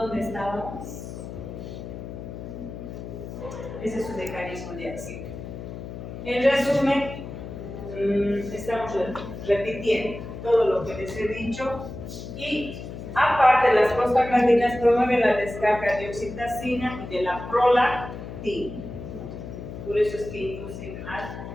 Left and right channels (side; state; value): left; noise; hum, 10 dB below the sound